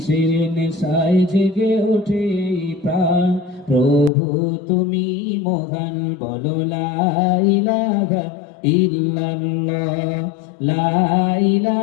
নেশায় জেগে ওঠে প্রাণ, প্রভু তুমি মহান। বলো লা ইলাহা ইল্লাল্লাহ, লা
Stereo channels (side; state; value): right; drops out; at 4.1 s